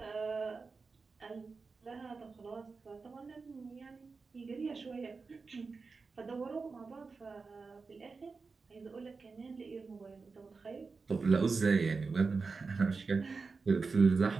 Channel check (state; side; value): quieter; left; 4.5 dB